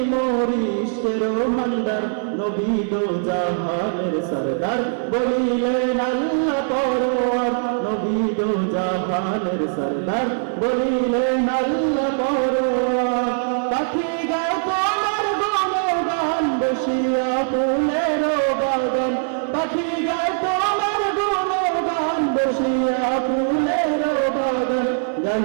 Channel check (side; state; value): left; silent; 59 dB below the other